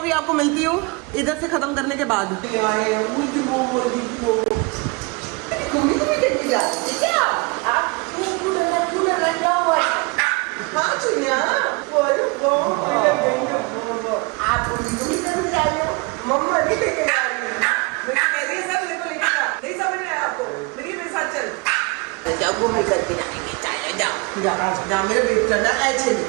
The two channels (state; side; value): quieter; left; 28.6 dB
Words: आपको मिलती हूँ इधर से खत्म करने के बाद। मम्मा नहीं लेके जा रही है, मैं कह रही है सर मेरे को लेके जा। नहीं समझ में आया आपको? मेरे साथ चल, जाओ घूमने करके जाएंगे, चलो जाओ जाओ जाओ मेरे बेटे, चलना ऐसे